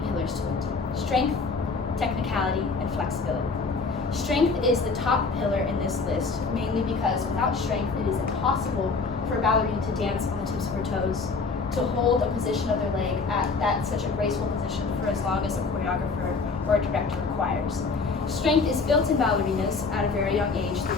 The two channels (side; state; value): right; quieter; 4.3 dB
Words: pillars to it: strength, technicality, and flexibility. Strength is the top pillar in this list, mainly because without strength, it is impossible for a ballerina to dance on the tips of her toes, to hold a position of their leg at such a graceful position for as long as a choreographer or a director requires. Strength is built in ballerinas at a very young age through